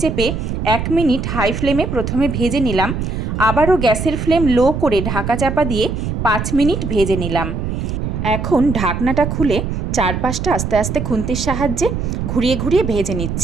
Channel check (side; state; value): right; noise; rumble, 3 dB below the sound